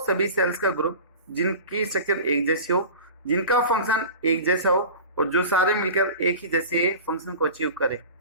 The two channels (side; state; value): both; inverted; correlation -0.35